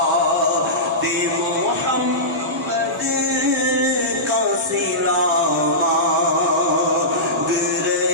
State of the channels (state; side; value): normal; both; correlation -0.17